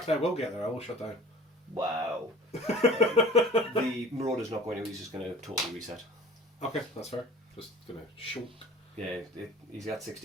I will get there. I will shut down. Wow. The Marauder's not going to. He's just going to totally reset. Okay, that's fair. Just gonna shoot. Yeah, he's got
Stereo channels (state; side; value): normal; both; correlation 0.44